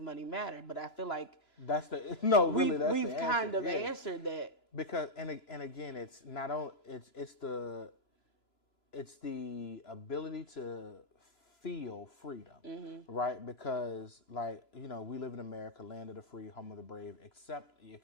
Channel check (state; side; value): late; right; 3.0 ms